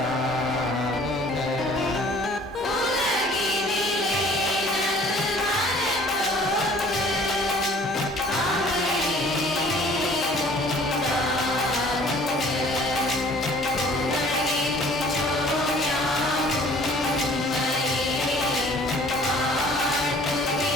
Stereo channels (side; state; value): both; normal; correlation 0.53